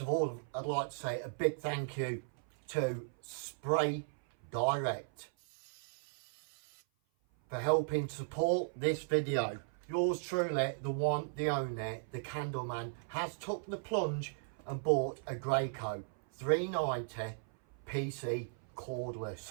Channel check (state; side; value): silent; left; 53 dB below the other